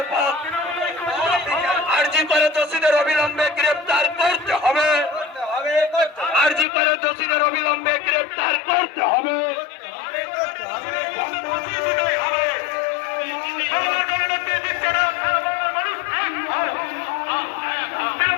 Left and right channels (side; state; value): right; drops out; at 6.7 s